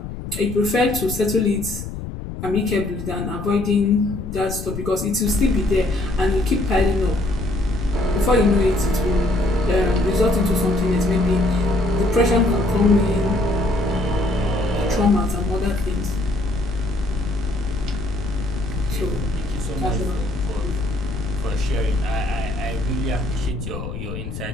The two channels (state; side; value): noise; left; rumble, 8 dB below the sound